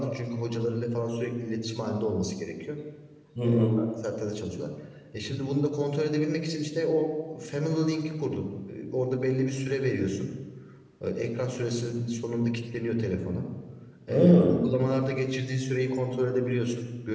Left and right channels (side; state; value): both; identical; correlation 1.00